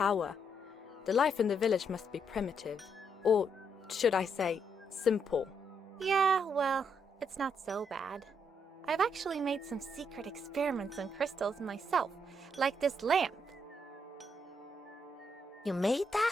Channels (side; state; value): both; normal; correlation 0.76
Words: The life in the village must be primitive. Or, should I say, simple. Yeah, well, it's not so bad. I've actually made some secret experiments on crystals myself, like this lamp. You made